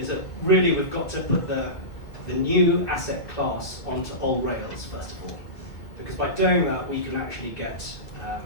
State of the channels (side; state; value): right; late; 1.7 ms